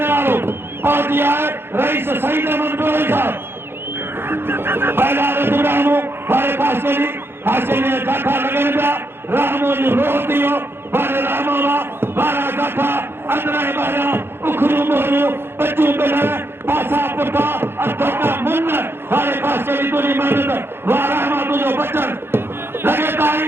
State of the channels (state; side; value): late; left; 0.11 ms